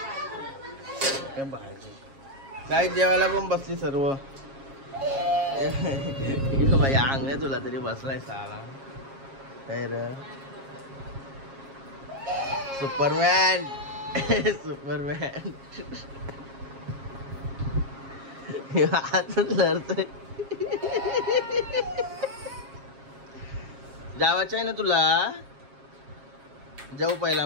काय भाजी काय जेवायला पण बसली सर्व. भाई अंग आहे तुला तरी बसलाय साला. काय र सुपरमॅन, सुपरमॅन. लढतोय. जावाचं आहे ना तुला? जाऊ पहिला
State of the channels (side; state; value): left; late; 7.4 ms